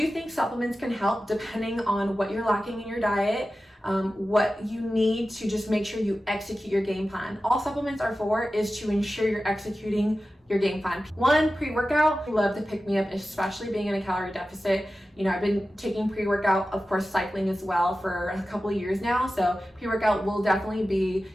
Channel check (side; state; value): both; normal; correlation 0.94